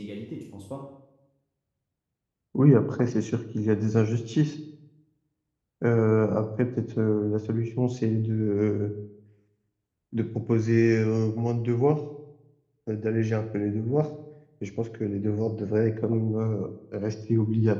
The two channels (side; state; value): both; identical; correlation 1.00